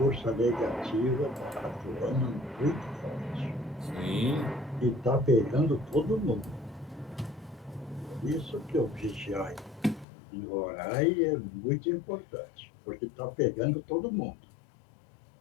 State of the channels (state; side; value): drops out; right; at 10.1 s